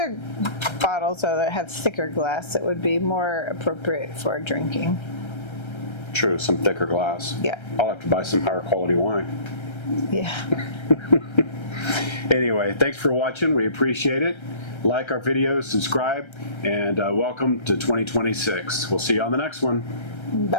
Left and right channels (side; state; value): right; late; 1.3 ms